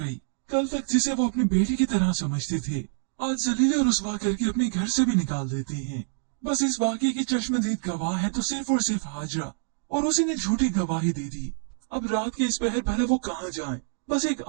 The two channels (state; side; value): silent; left; digital silence